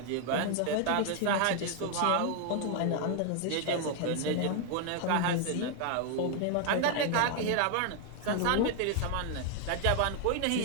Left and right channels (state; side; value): different; both; correlation 0.00